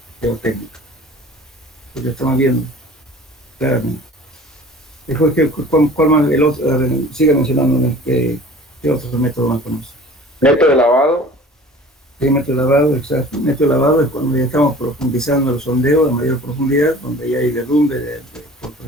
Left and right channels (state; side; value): normal; both; correlation 0.45